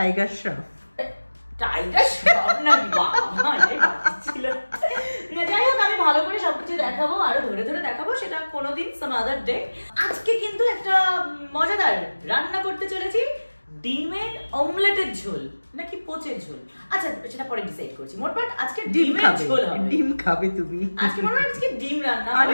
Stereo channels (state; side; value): inverted; both; correlation -1.00